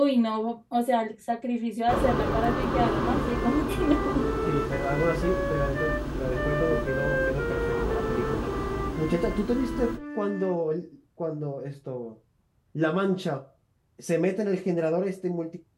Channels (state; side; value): identical; both; correlation 1.00